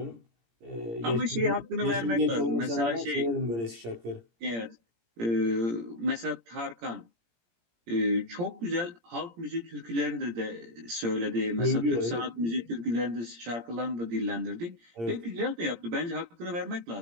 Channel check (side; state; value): left; late; 17 ms